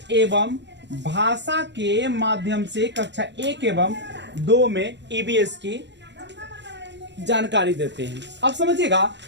एवं भाषा के माध्यम से कक्षा 1 एवं 2 में ईवीएस की जानकारी देते हैं। अब समझिएगा,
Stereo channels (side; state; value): left; late; 0.51 ms